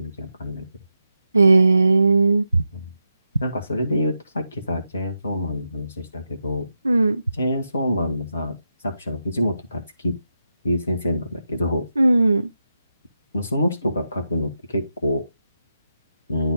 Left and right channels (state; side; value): inverted; both; correlation -0.88